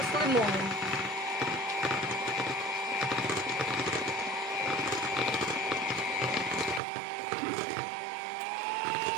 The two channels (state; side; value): drops out; left; at 6.8 s